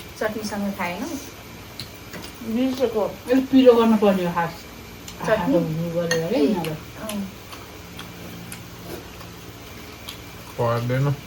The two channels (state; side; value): identical; both; correlation 1.00